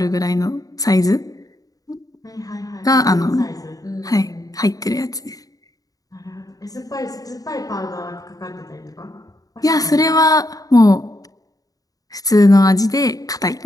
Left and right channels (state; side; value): late; right; 0.18 ms